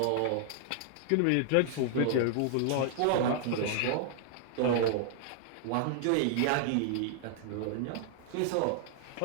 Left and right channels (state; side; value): different; both; correlation -0.01